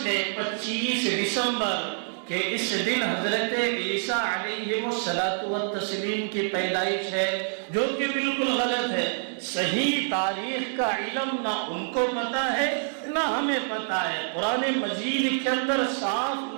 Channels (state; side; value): silent; left; 60 dB below the other